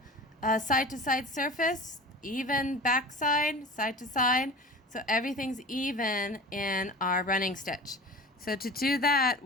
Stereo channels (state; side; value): normal; both; correlation 0.36